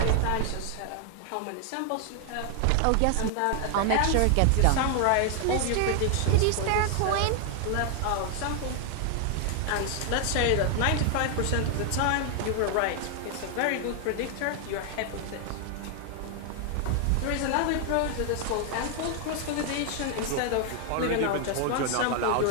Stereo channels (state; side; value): different; both; correlation 0.00